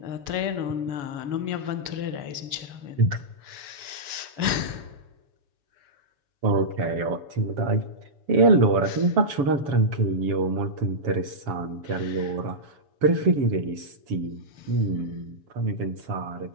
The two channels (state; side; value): late; left; 7.1 ms